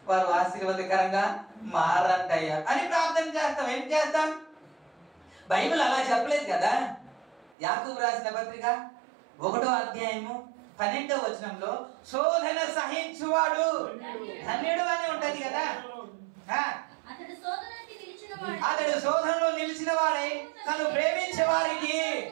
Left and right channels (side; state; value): left; drops out; at 7.6 s